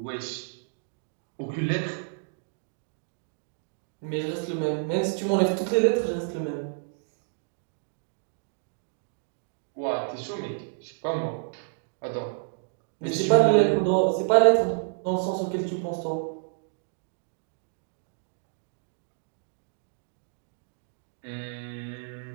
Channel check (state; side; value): silent; left; digital silence